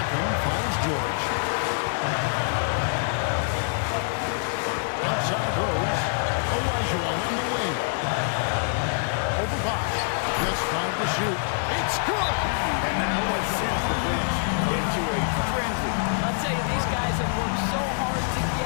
finds George. Outside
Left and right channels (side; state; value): right; silent; 61 dB below the other